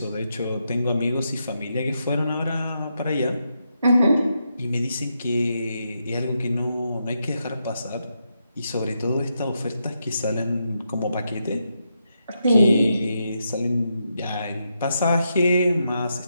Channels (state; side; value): inverted; both; correlation -0.83